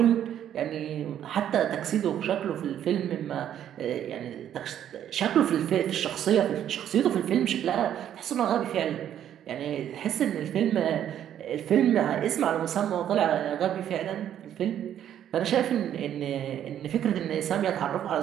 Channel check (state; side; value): quieter; left; 10.4 dB